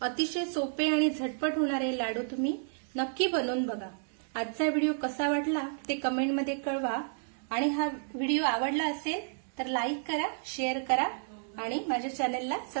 अतिशय सोपे आणि झटपट होणारे लाडू तुम्ही नक्की बनवून बघा। आजचा व्हिडिओ कसा वाटला ते कमेंटमध्ये कळवा आणि हा व्हिडिओ आवडला असेल तर लाईक करा, शेअर करा आणि माझ्या चॅनलला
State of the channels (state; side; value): silent; left; digital silence